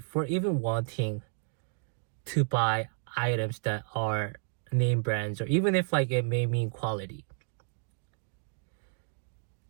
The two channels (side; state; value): left; silent; 57 dB below the other